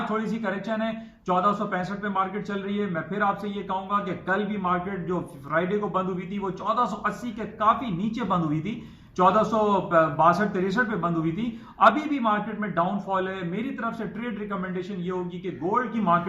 थोड़ी सी करेक्शन है, 1465 पे मार्केट चल रही है। मैं फिर आपसे ये कहूंगा कि कल भी मार्केट जो फ्राइडे को बंद हुई थी वो 1480 के काफी नीचे बंद हुई थी, 1462-63 पे बंद हुई थी। अभी भी मार्केट में डाउनफॉल है। मेरी तरफ से ट्रेड रिकमेंडेशन ये होगी कि गोल्ड की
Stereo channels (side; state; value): both; identical; correlation 1.00